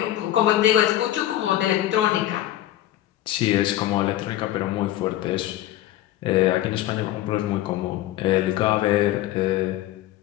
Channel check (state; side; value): quieter; right; 14.0 dB